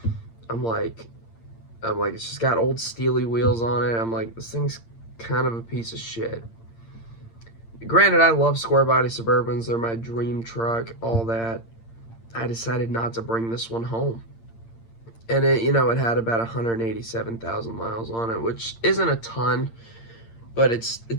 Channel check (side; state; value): right; late; 8.8 ms